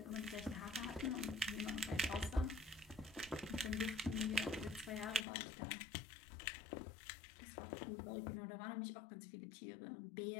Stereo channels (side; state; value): right; drops out; at 5.2 s